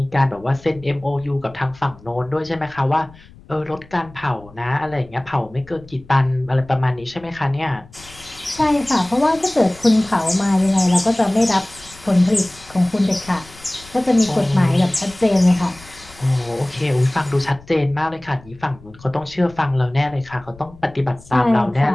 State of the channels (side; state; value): left; noise; rumble, 22 dB below the sound